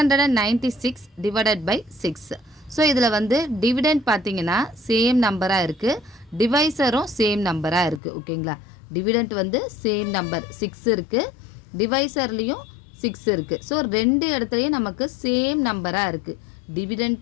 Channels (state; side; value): drops out; right; at 8.0 s